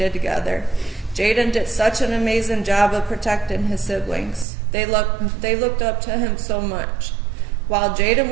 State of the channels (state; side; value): drops out; left; at 4.5 s